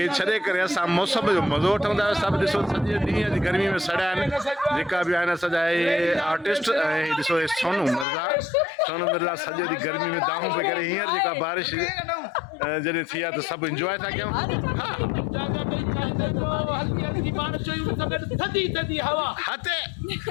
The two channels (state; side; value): drops out; right; at 8.1 s